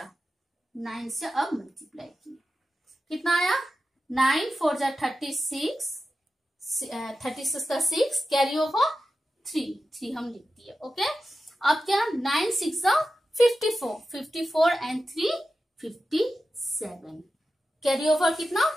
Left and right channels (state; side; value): normal; both; correlation 0.92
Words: 9 से अब मल्टीप्लाई किए कितना आया, 9 4 जा 36, 36 का 6 कैरी ओवर 3 हम लिख दिए। ओके, अब क्या 9 6 जा 54, 54 एंड 3 57, कैरी ओवर कितना